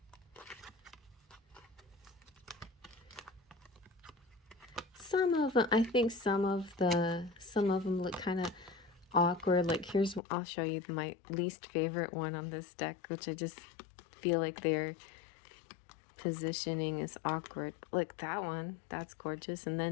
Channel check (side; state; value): right; drops out; at 10.2 s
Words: some of them, I think some of them look kind of awkward. Like, I'll show you my least favorite one on this deck, which I just feel like their positioning is awkward. Like that one, that's gorgeous, and